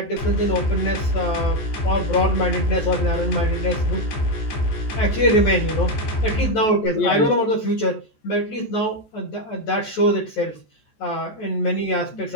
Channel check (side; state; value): right; late; 14 ms